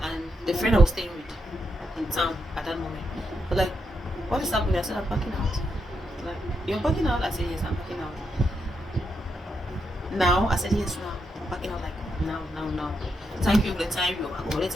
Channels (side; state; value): both; normal; correlation 0.82